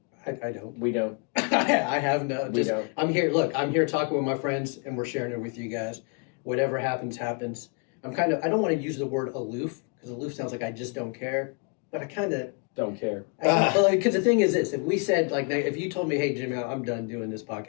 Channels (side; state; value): right; quieter; 36.2 dB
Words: I don't. We don't. I have no. We don't. I'm here. Look, I'm here talking with my friends, and we're sharing it with you guys. Whatever happens, happens. I don't want to use the word aloof because aloof sounds like I just don't care, but I kind of Don't care. because the thing is this: if we said like, if you told me, "Hey, Jimmy, I'm done doing this